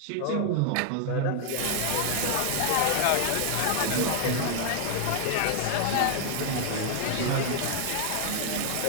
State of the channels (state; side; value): different; both; correlation 0.00